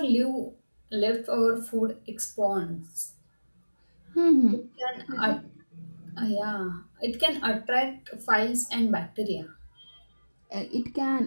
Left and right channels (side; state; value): both; inverted; correlation -1.00